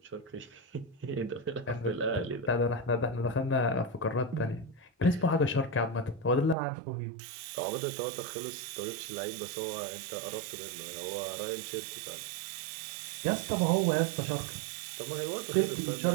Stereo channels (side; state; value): left; drops out; at 6.6 s